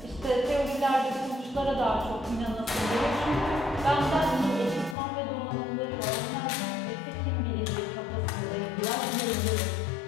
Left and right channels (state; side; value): drops out; right; at 5.0 s